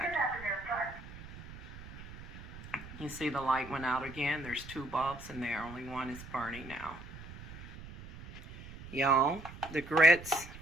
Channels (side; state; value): right; noise; rumble, 14 dB below the sound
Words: You see the light went out again. There's 2 bulbs in there. Only one is burning now. Y'all, the grits